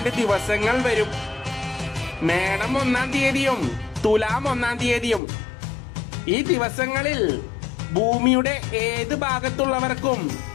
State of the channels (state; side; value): drops out; right; at 5.2 s